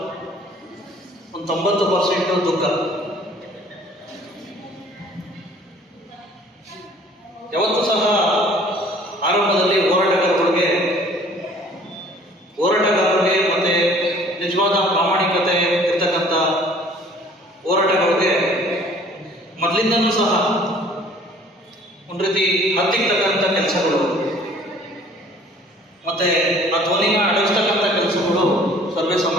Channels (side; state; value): both; normal; correlation 0.53